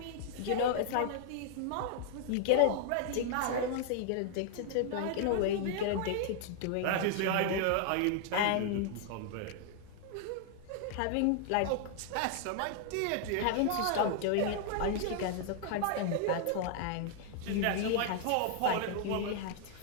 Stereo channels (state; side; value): different; both; correlation 0.00